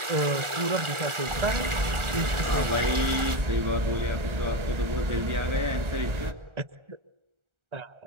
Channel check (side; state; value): left; late; 1.3 ms